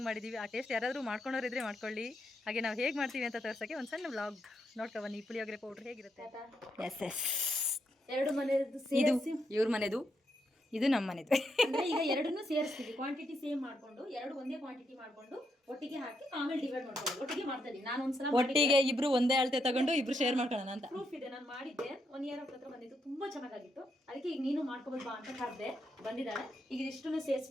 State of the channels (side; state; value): both; normal; correlation 0.80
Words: ಮಾಡಿದ್ದೀವಿ ಆ ಟೇಸ್ಟ್ ಯಾರಾದರೂ ಮಾಡ್ಕೊಂಡೋರಿದ್ರೆ ಮಾಡ್ಕೊಳ್ಳಿ. ಹಾಗೆ ನಾವು ಹೇಗೆ ಮಾಡ್ತೀವಿ ಅಂತ ತೋರ್ಸೋಕ್ಕೆ ಒಂದು ಸಣ್ಣ ವ್ಲಾಗ್ ನೋಡ್ಕೊಬನ್ನಿ. ಪುಳಿಯೋಗರೆ ಪೌಡ್ರ್ ಹೇಗಿರುತ್ತೆ. ಎಸ್ ಎರಡು ಮನೆಯದು ಇದು ಇವ್ರ ಮನೆದು, ಇದು ನಮ್ಮ ಮನೆದು. ಅಂದ್ರೆ ಈಗ ಎರಡನ್ನೂ ಸೇರಿಸ್ತೀವಿ. ಕ್ವಾಂಟಿಟಿ ಸೇಮ್ ಮಾಡ್ಕೊಂಡು ಎರಡು ಒಂದೇ ಕ್ವಾಂಟಿಟಿ ಮಾಡ್ಕೊಂಡು ಒಟ್ಟಿಗೆ ಹಾಕಿ ಆಮೇಲೆ ಡಿವೈಡ್ ಮಾಡ್ಕೊಂಡು ಒಟ್ಟಿಗೆ ಮಾಡ್ತಾ ಇದ್ದೀನಿ. ನಾನು ಒಂದ್ಸಲ ಒಟ್ಟಿಗೆ ಇಬ್ರು ಒಂದೇ ಅಳತೆ ತಗೊಂಡು ಇಬ್ರು ಶೇರ್ ಮಾಡ್ಕೊಳ್ಳೋಣ ಅಂತ ಪ್ರೂಫ್ ಇದೆ. ನಾನು ಮಾಡಿದ್ದೆ 1 ಇಯರ್ ಹತ್ರ ಬಂದಿತ್ತು, ತುಂಬಾ ಚೆನ್ನಾಗಿತ್ತು. ಅದಕ್ಕೆ ಈಗ ನೀನು ಮಾಡ್ಕೋಬೋದು ಬಾ ಅಂತ ಕರೆದೆ, ಬಂದಿದ್ದಾಳೆ. ಈಗ ಇಷ್ಟನ್ನು